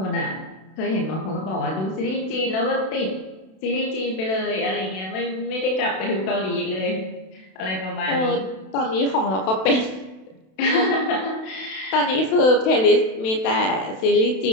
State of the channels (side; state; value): right; late; 32 ms